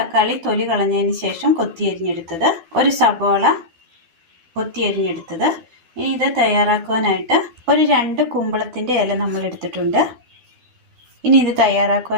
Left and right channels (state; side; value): late; left; 12 ms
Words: തൊലി കളഞ്ഞതിന് ശേഷം കൊത്തിയരിഞ്ഞെടുത്തത്, ഒരു സബോള കൊത്തിയരിഞ്ഞെടുത്തത്. ഇനി ഇത് തയ്യാറാക്കുവാനായിട്ട് ഒരു 2 കുമ്പളത്തിൻ്റെ ഇല നമ്മൾ എടുത്തിട്ടുണ്ട്. ഇനി ഇത്